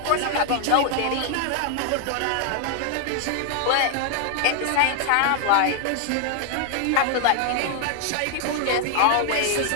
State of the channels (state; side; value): different; both; correlation 0.00